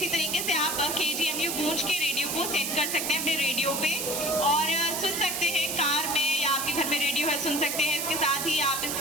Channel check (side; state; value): right; noise; hiss, 2 dB below the sound